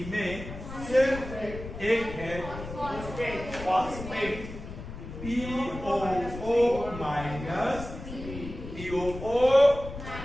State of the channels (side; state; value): left; noise; rumble, 11 dB below the sound